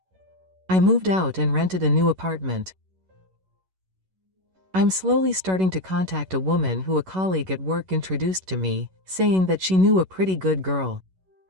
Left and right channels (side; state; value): left; late; 11 ms